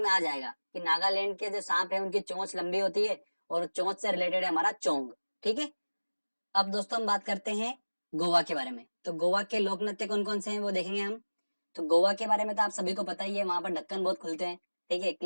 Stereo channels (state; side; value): inverted; both; correlation -1.00